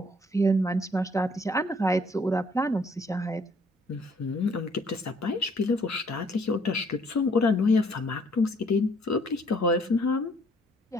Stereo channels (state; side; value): normal; both; correlation 0.62